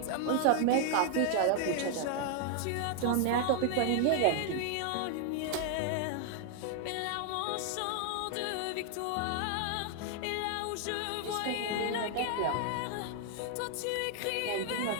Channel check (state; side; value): different; both; correlation 0.00